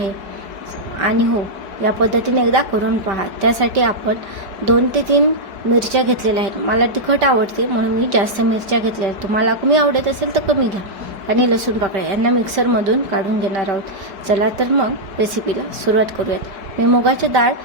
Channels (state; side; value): late; left; 5.1 ms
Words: आणि हो, या पद्धतीने एकदा करून पहा. त्यासाठी आपण 2 ते 3 मिरच्या घेतलेल्या आहेत. मला तिखट आवडते म्हणून मी जास्त मिरच्या घेतल्या आहेत. तुम्हाला कमी आवडत असेल तर कमी घ्या. आणि लसूण पाकळ्या यांना मिक्सरमधून काढून घेणार आहोत. चला तर मग रेसिपीला सुरुवात करूयात. मी मुगाची डाळ